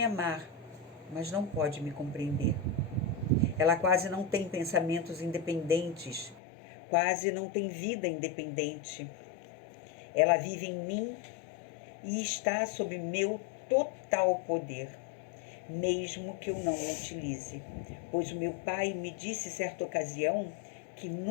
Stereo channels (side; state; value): right; drops out; at 6.4 s